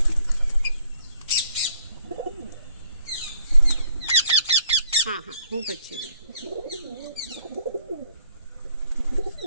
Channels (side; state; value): both; inverted; correlation -0.64